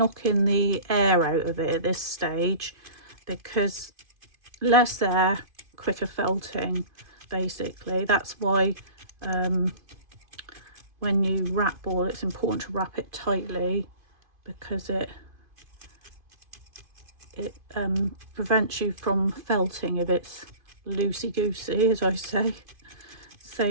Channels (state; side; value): late; left; 2.5 ms